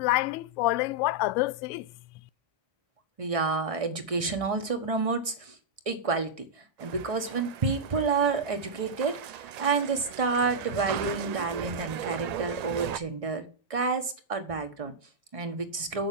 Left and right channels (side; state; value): left; late; 1.6 ms